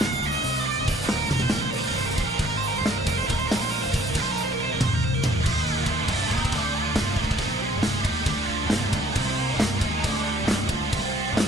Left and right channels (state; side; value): normal; both; correlation 0.58